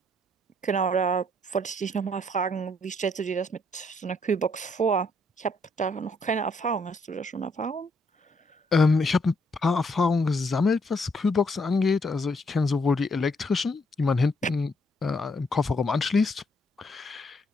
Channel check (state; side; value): normal; both; correlation 0.71